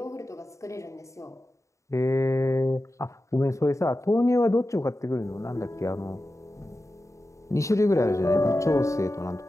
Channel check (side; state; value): right; late; 0.15 ms